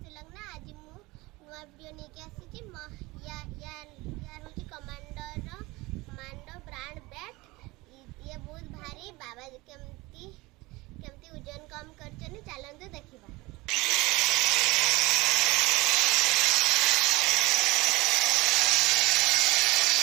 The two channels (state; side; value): quieter; left; 22.2 dB